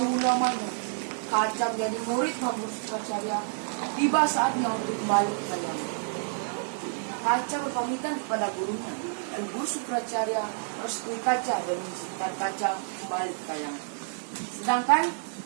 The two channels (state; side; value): silent; left; digital silence